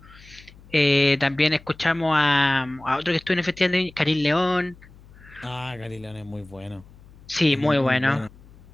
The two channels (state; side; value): noise; left; hum, 23 dB below the sound